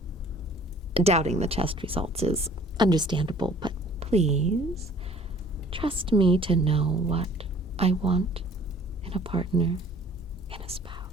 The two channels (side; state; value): both; normal; correlation 0.53